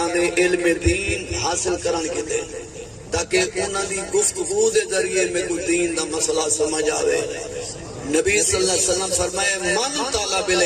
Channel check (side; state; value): both; identical; correlation 1.00